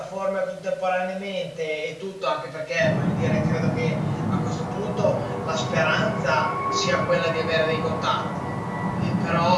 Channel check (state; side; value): identical; both; correlation 1.00